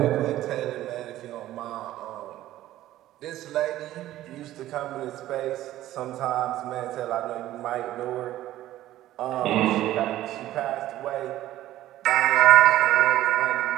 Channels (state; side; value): quieter; left; 14.2 dB